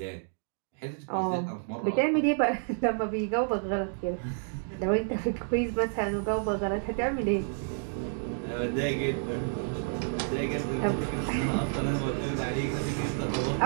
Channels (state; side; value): silent; left; digital silence